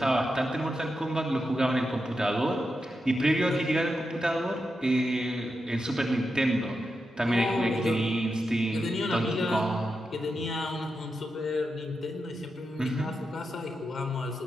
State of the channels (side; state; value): both; normal; correlation 0.88